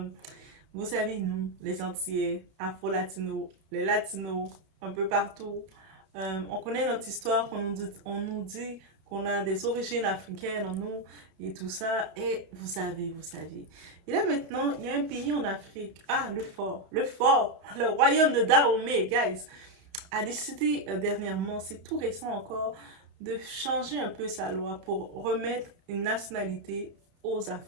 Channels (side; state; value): left; late; 32 ms